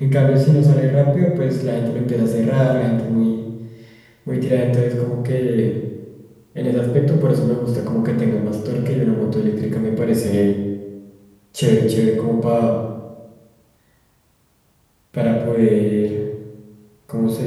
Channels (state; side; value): identical; both; correlation 1.00